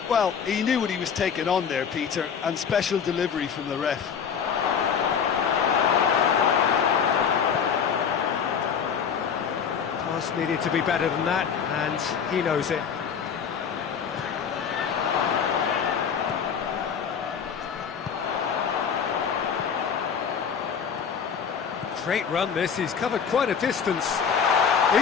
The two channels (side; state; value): right; quieter; 7.0 dB